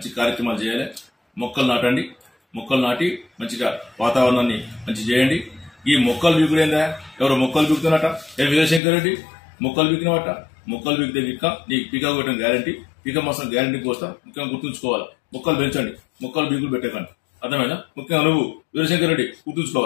కార్యక్రమాలు చేయాలి. మొక్కలు నాటండి, మొక్కలు నాటి మంచిగా వాతావరణాన్ని మంచి చేయండి. ఈ మొక్కలు బీకుడైందా? ఎవరో మొక్కలు బీకుతున్నట, వీరశంకర్ రెడ్డి మొక్కలు బీకినవట. మొక్కలు బీకితే విక్క నీకు పీకా కొట్టడం గ్యారంటీ, పీక మాసం గ్యారంటీ కోస్తా. ముఖ్యంగా గుర్తుంచుకోవాలి, మొక్కలు పెంచండి, మొక్కలు బీకులు పెట్టకండి. అర్థమైనా? ముఖ్యంగా నువ్వు వీరశంకర్ రెడ్డి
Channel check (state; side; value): drops out; right; at 8.8 s